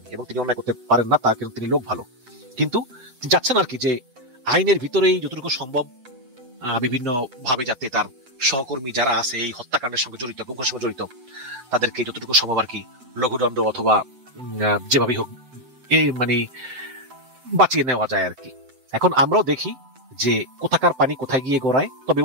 এবং তিনি অন্যায় করতে পারেন না, তার কিন্তু তিনি লোক ভালো। কিন্তু যাচ্ছেন আর কি যে আইনের ভিতরেই যতটুকু সম্ভব বিভিন্ন ভাবে যাতে তার সহকর্মী যারা আছে এই হত্যাকাণ্ডের সঙ্গে জড়িত, গুমের সঙ্গে জড়িত, তাদেরকে যতটুকু সম্ভব আর কি লঘুদণ্ড অথবা যেভাবেই হোক মানে বাঁচিয়ে নেওয়া যায় আর কি। এখন আমরাও দেখি যে কোথাকার পানি কোথায় গিয়ে গড়ায়। তবে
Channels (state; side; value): late; left; 7.8 ms